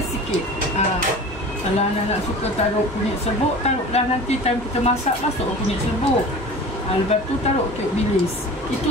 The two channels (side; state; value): both; normal; correlation 0.38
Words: sikit. Kalau anak-anak suka taruh kunyit serbuk, taruhlah nanti time kita masak, masuk kunyit serbuk. Lepas tu taruh kek bilis. Itu